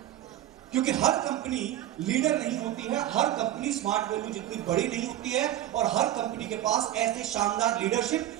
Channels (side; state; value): left; quieter; 12.9 dB